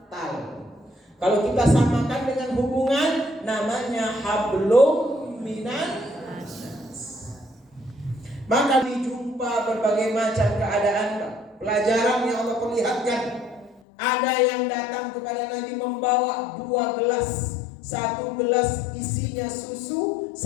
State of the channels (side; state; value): right; drops out; at 13.8 s